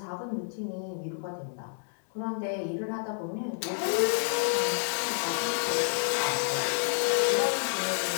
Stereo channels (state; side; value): silent; right; digital silence